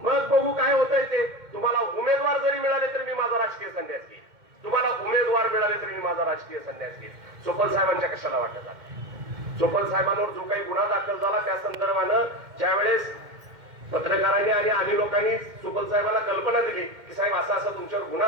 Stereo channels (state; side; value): late; left; 2.1 ms